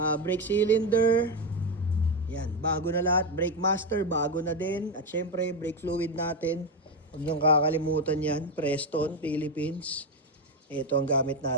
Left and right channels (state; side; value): normal; both; correlation 0.10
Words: brake cylinder. Yan, bago na lahat. Brake master, bago na din. At siyempre, brake fluid natin. Huwag niyong kakalimutan yan. Preston, Philippines. Ito ang gamit